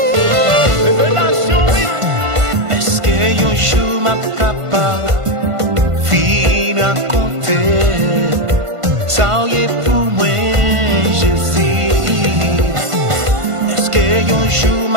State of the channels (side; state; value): left; late; 1.5 ms